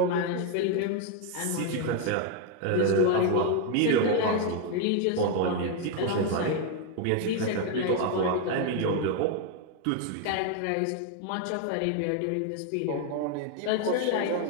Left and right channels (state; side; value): different; both; correlation 0.01